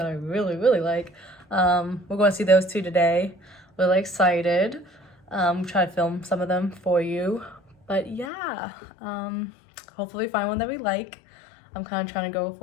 I really like. We're going to see those 2 today. Really excited. Try to film some of them for you. But yeah, hopefully find one that we like. I'm kind of trying to go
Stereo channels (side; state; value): right; drops out; at 8.3 s